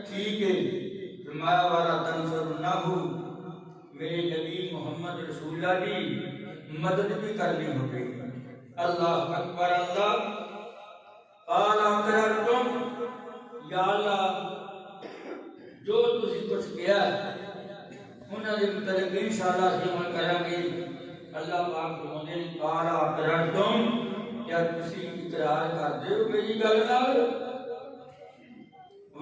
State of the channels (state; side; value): identical; both; correlation 1.00